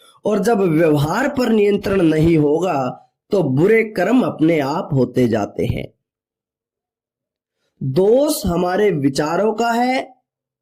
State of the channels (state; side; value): identical; both; correlation 1.00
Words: और जब व्यवहार पर नियंत्रण नहीं होगा तो बुरे कर्म अपने आप होते जाते हैं। दोष हमारे विचारों का है।